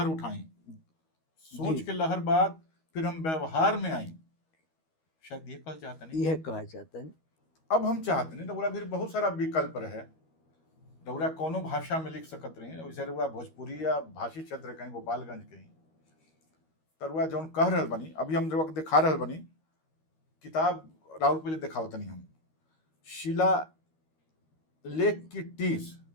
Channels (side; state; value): right; late; 13 ms